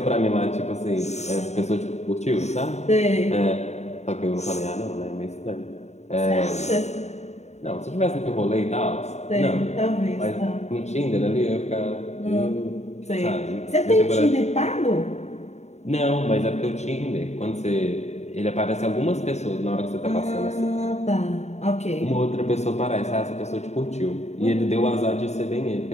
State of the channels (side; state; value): right; late; 0.32 ms